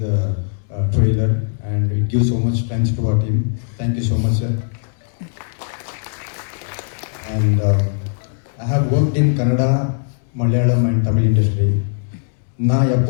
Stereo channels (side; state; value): right; silent; 66 dB below the other